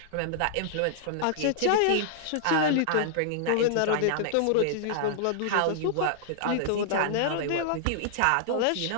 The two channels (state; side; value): different; both; correlation -0.01